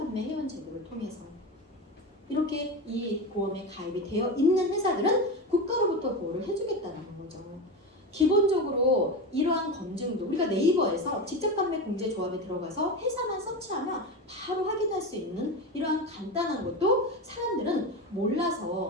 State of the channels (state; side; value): normal; both; correlation 0.21